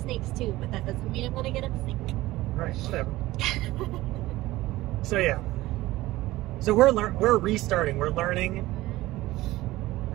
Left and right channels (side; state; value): left; quieter; 17.6 dB